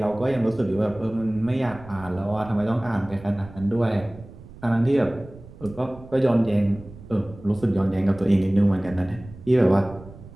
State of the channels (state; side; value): noise; right; rumble, 18 dB below the sound